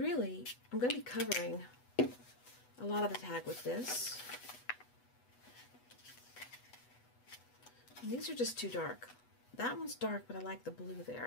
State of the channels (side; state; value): right; late; 8.1 ms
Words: I'm going to be covering a lot of the tag with this. And these are just too dark. That one's dark, but I like the blue